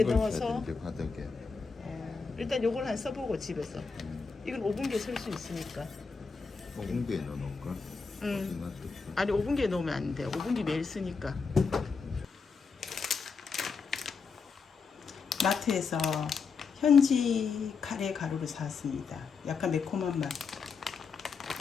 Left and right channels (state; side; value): quieter; right; 5.0 dB